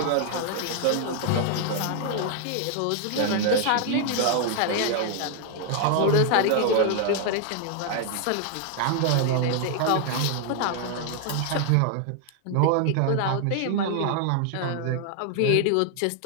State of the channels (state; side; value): different; both; correlation 0.00